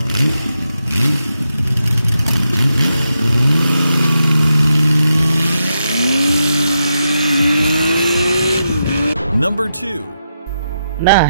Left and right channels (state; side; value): inverted; both; correlation -0.85